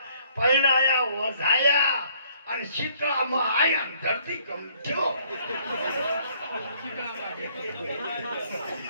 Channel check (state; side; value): inverted; both; correlation -0.63